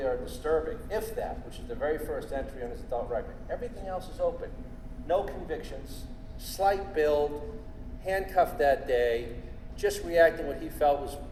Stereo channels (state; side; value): identical; both; correlation 1.00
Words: or disturbing, if that, which is the very first entry on his adult record. Everything else is open. No convictions, slight build, handcuffed that day, just reacting what he felt